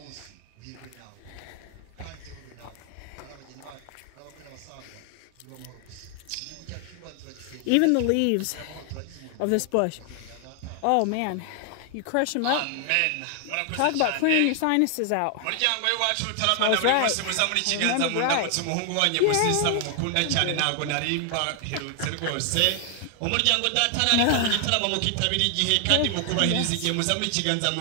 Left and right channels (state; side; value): different; both; correlation 0.00